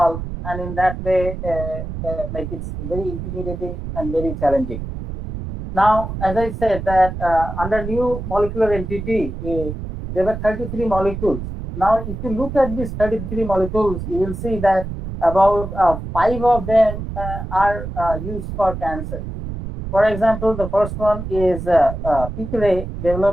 and in that way, like it's very intimidating and very challenging. Now, as I said, that under new molecular entity, there were 33 molecules. Now, if you look at these 33 molecules, you will see that about five of them are used for cancer. For example, the first one is Picre,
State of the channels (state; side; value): noise; right; rumble, 7 dB below the sound